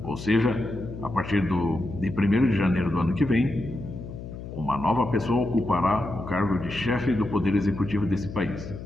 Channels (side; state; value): left; noise; hum, 11 dB below the sound